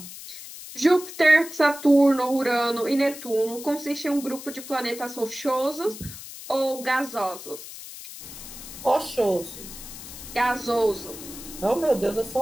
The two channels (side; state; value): left; noise; hiss, 13 dB below the sound